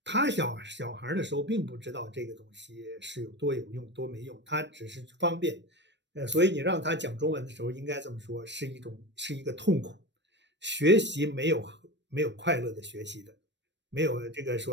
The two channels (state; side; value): late; left; 0.52 ms